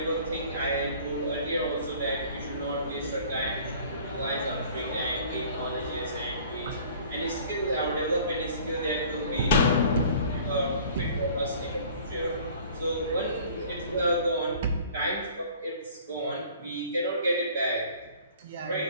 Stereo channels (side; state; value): both; inverted; correlation -0.49